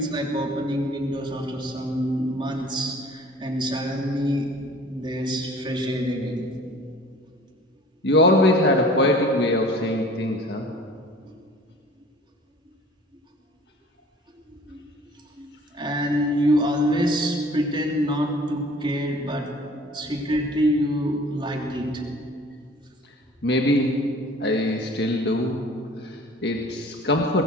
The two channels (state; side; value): normal; both; correlation 0.48